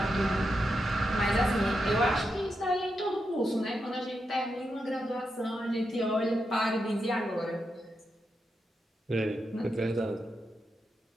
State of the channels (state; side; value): normal; both; correlation 0.86